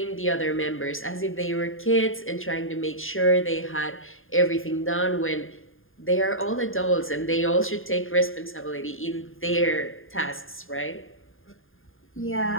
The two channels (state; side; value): late; right; 0.59 ms